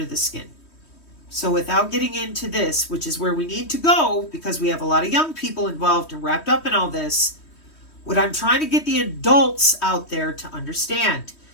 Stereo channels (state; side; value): late; right; 3.1 ms